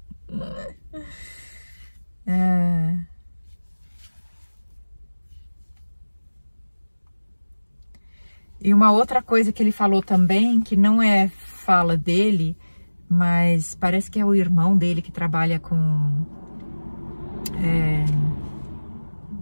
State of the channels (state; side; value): inverted; both; correlation -1.00